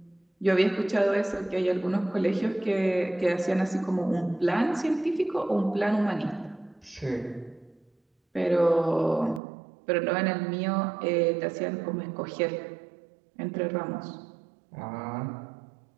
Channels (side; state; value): left; drops out; at 9.4 s